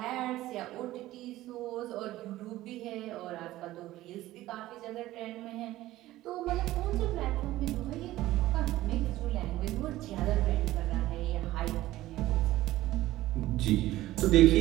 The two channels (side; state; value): left; quieter; 15.9 dB